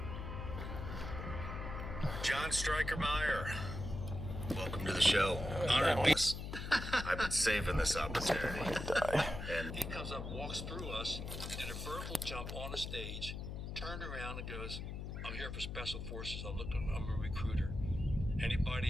John Strykermeyer, welcome to the show. Honored beast. I've been saving this opportunity. And he comes up, walks through us, did a vertical jump on the stage, turned around and goes, "I'm here for Special Forces. I'm a recruiter. Anybody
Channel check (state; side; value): noise; left; hum, 6 dB below the sound